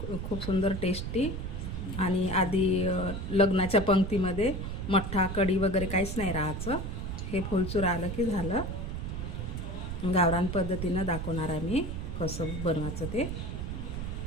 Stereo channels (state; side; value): noise; right; rumble, 5 dB below the sound